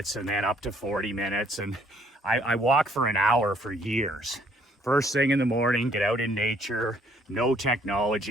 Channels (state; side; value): normal; both; correlation 0.64